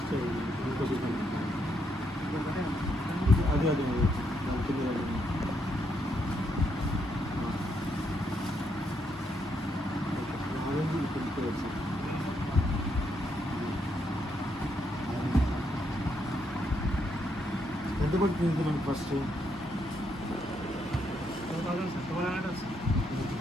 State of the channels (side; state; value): both; normal; correlation 0.77